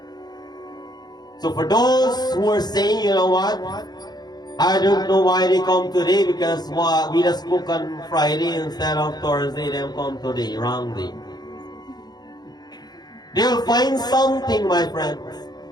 So for those who are saying, you know what, I don't know why they come today because we just spoke on Friday instead of Thursday, they come today, wrongly. They will find something, my friends,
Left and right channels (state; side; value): late; right; 0.20 ms